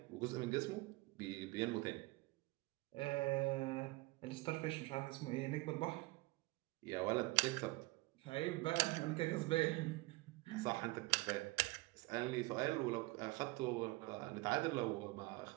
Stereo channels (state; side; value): quieter; left; 22.8 dB